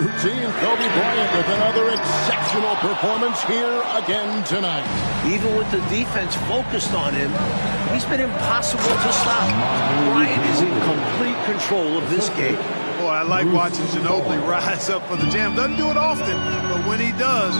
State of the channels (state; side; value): inverted; both; correlation -1.00